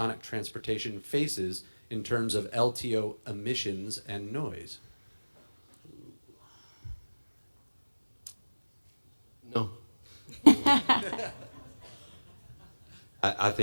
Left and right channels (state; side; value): inverted; both; correlation -1.00